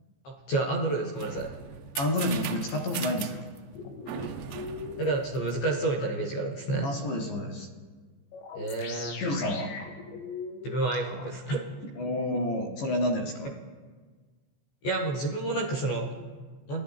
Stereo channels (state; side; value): late; right; 14 ms